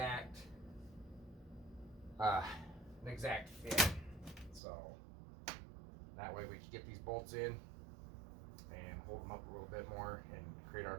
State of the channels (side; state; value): left; drops out; at 4.6 s